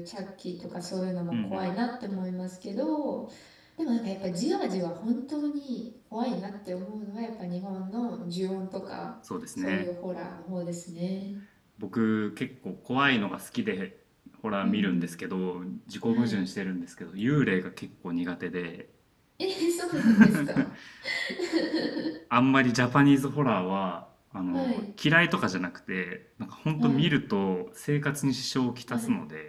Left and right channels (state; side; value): identical; both; correlation 1.00